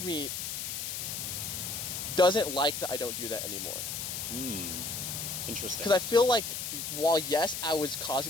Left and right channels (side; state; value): left; noise; hiss, 4 dB below the sound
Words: me doesn't like that I don't do that anymore. Interesting. Because I feel like, while yes, I was